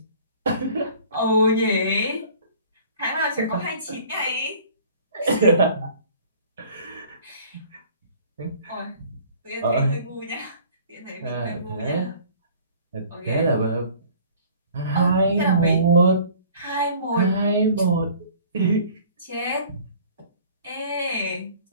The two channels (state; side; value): inverted; both; correlation -0.50